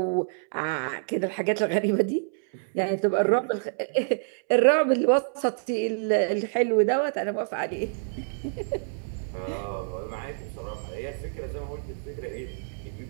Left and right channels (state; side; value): silent; left; 60 dB below the other